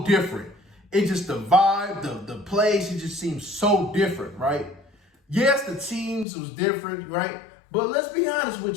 different. It just, the vibe, the plays, it just seems so different, right? Yes, the teams was different, right? But let's be honest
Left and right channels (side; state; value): right; drops out; at 6.2 s